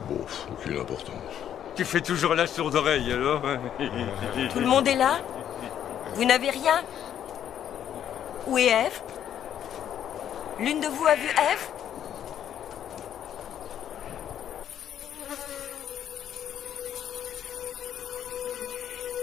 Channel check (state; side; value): quieter; right; 9.9 dB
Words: Bon, aucune importance. Tu fais toujours la sourde oreille, alors? Tout le monde est là? Vous n'avez rien? Où est Ève? L'une de vous a vu Ève?